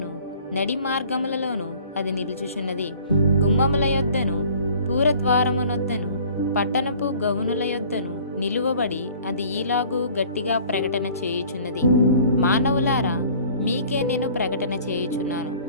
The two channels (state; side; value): inverted; both; correlation -0.51